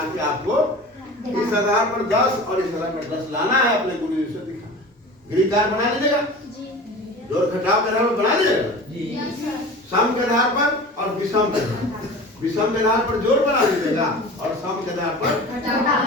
के आपको इस आधार पर 10 और इस आधार पर 10 लाना है, अपने गुरु जी से दिखाना। गृह कार्य बना लीजिएगा, जोड़ घटाव के आधार पर बना लीजिएगा, सम के आधार पर और विषम के आधार पर। विषम के आधार पर जोड़ बना लीजिएगा और सम के आधार पर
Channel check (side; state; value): both; normal; correlation 0.37